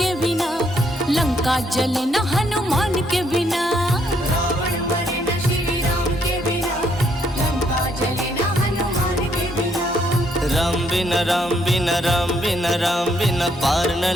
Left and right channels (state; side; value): normal; both; correlation 0.71